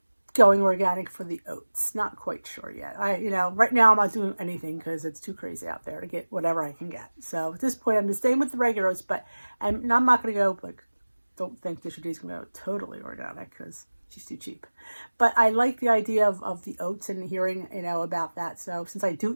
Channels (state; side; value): inverted; both; correlation -1.00